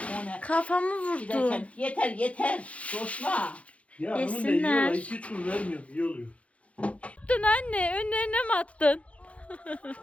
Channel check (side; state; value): right; late; 0.064 ms